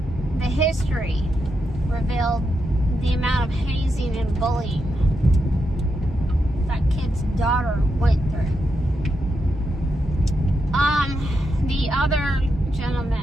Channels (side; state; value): both; normal; correlation 0.84